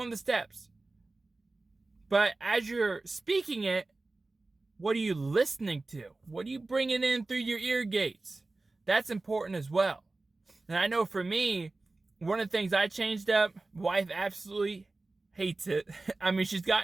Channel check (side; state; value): left; quieter; 3.3 dB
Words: of the steps. But as you're speaking it, what are you listening to? What are you bringing in through your ear gates? That's important as well. And I know for me, one of the things I changed up, wife absolutely hates it. I mean, she's